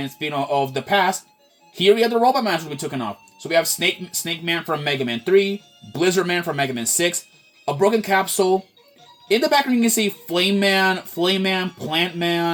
speaking of the past, here we have the robot monsters we took off. So we have Snake Man from Mega Man 3, Blizzard Man from Mega Man 6, a broken capsule. In the background, you can see Flame Man, Plant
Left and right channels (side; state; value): both; identical; correlation 1.00